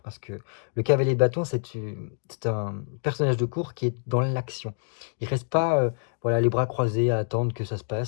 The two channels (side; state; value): right; silent; digital silence